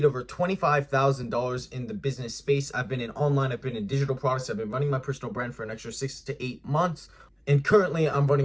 over $25,000 in the business space. I've been in online, I've been in digital products. I've been running my personal brand for an extra 6 to 8 months. And currently I'm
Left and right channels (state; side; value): identical; both; correlation 1.00